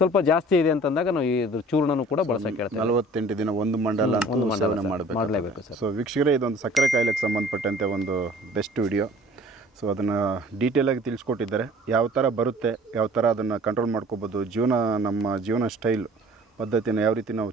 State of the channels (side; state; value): both; normal; correlation 0.49